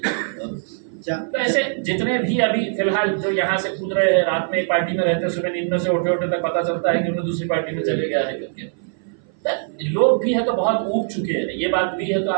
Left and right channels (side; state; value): left; silent; 57 dB below the other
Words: तो ऐसे जितने भी अभी फिलहाल जो यहाँ से कूद रहे हैं रात में एक पार्टी में रहते हैं सुबह नींद में से उठे उठे तक पता चलता है कि उन्हें दूसरी पार्टी में चले गया है करके. लोग भी है तो बहुत ऊब चुके हैं. ये बात भी है तो